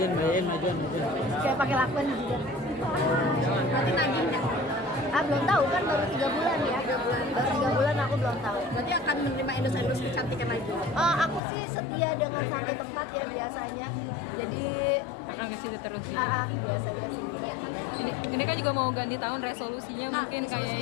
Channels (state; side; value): drops out; right; at 11.4 s